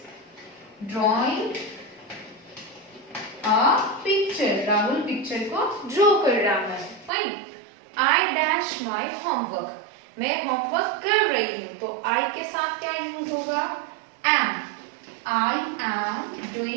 drawing a picture. Rahul picture को ड्रॉ कर रहा है, fine. I dash my homework. मैं होमवर्क कर रही हूँ, तो आई के साथ क्या यूज होगा, am. I am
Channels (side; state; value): left; drops out; at 7.1 s